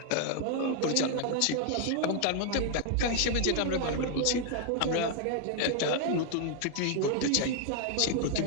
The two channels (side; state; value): both; different; correlation 0.00